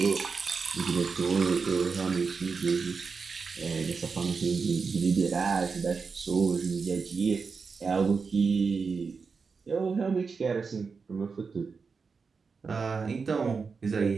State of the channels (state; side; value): quieter; left; 5.0 dB